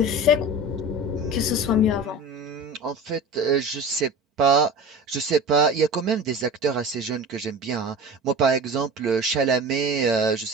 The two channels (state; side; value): normal; both; correlation 0.34